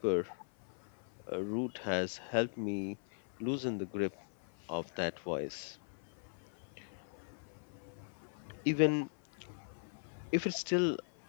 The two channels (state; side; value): silent; right; 52 dB below the other